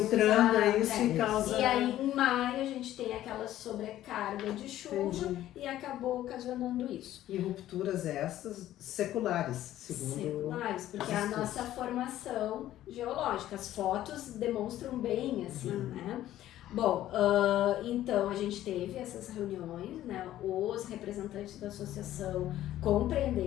isso e causa... E aí em maio a gente tem aquela sobrecarga de chuva e acabou ocasionando isso. E rupturas essas seculares, segundo... Seculares, porque é a nossa formação geológica. As fotos demonstram bem assim, né? Bom, então a gente teve essas reuniões, né? Os representantes da associação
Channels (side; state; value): right; quieter; 13.4 dB